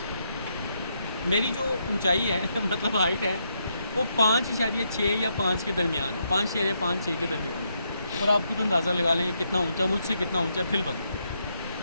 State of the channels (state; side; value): inverted; both; correlation -0.79